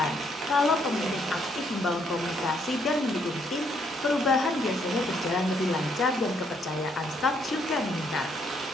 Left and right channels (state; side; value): normal; both; correlation 0.71